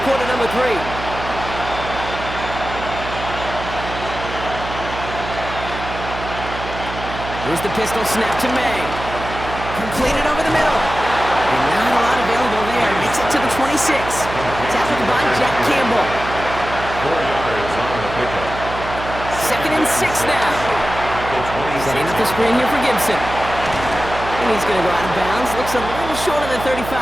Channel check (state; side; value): noise; right; hum, 9 dB below the sound